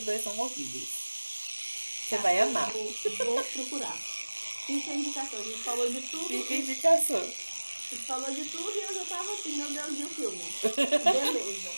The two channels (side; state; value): both; inverted; correlation -1.00